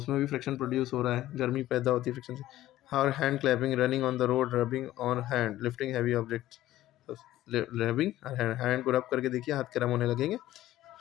भी फ्रिक्शन प्रोड्यूस हो रहा है, गर्मी पैदा होती है फ्रिक्शन से। और hand clapping, running on the road, rubbing on hand, lifting heavy objects. Rubbing, hand को रब करके देखिए, हाथ गर्म होने लगेंगे,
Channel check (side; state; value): right; quieter; 14.6 dB